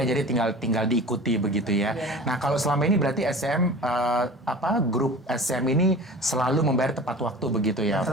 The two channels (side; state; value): both; normal; correlation 0.38